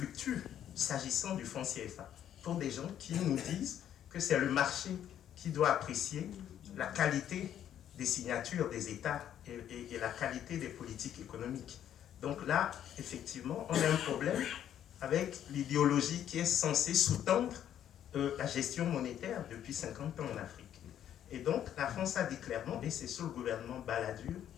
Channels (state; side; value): quieter; right; 10.4 dB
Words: s'agissant du franc CFA, pour des gens qui nous disent que c'est le marché qui doit apprécier la qualité des signatures des États et la qualité des politiques économiques. Donc là, effectivement, on a un problème avec l'idéologie qui est censée sous-tendre la gestion monétaire depuis 50 ans en Afrique. Et donc, la France a dit clairement, et c'est sous le gouvernement Balladur